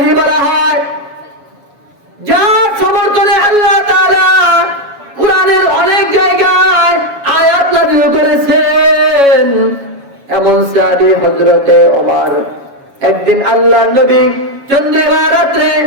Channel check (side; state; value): left; late; 7.2 ms